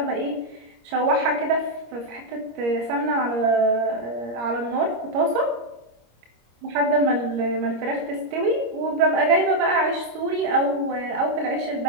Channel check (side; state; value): left; late; 26 ms